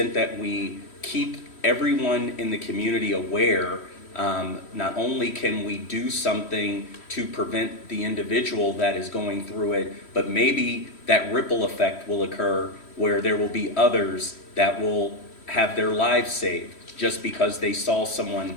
that we keep everyone in the community aware, not only can we do something to prevent the individual that is going through it, but maybe that ripple effect will occur where there will be others that will have their lives saved just because they saw someone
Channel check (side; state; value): right; late; 3.1 ms